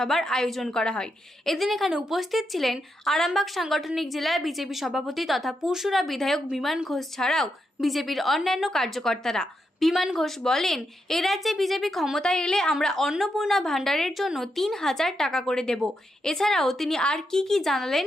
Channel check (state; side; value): normal; both; correlation 0.83